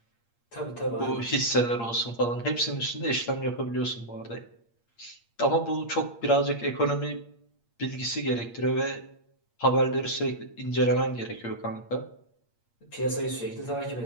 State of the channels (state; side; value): late; right; 8.6 ms